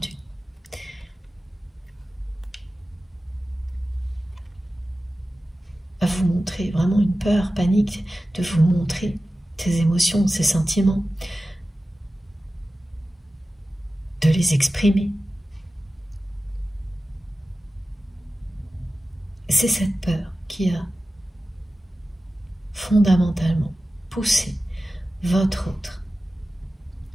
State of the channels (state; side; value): normal; both; correlation 0.95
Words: À vous montrer vraiment une peur, panique, de vous montrer ses émotions, ses sentiments, de les exprimer. C'est cette peur qui a fondamentalement poussé votre autre